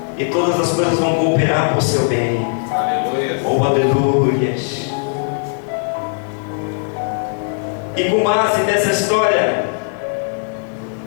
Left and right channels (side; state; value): right; silent; 67 dB below the other